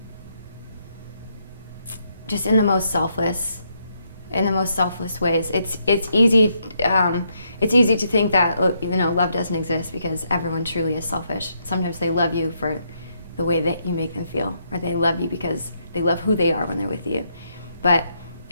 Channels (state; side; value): inverted; both; correlation -0.76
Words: in the most selfless ways. It's easy to think that love doesn't exist because everyone truly is selfish. Sometimes they love you for the way that you make them feel, or they love you because they love who they are when they're with you. But